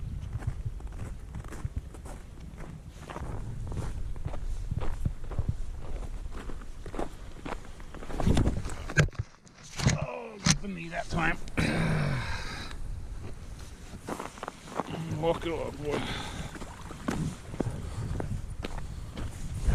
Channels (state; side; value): identical; both; correlation 1.00